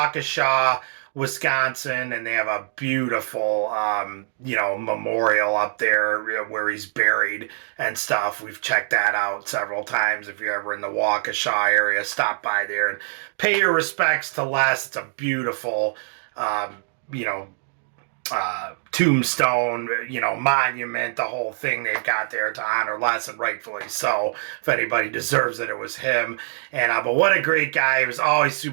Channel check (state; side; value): silent; left; digital silence